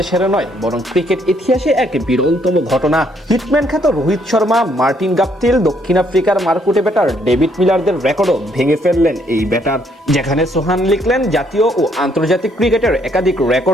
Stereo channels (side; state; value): both; normal; correlation 0.69